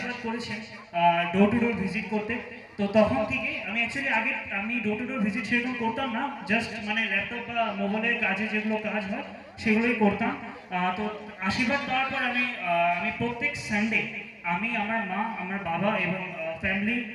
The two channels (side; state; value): both; identical; correlation 1.00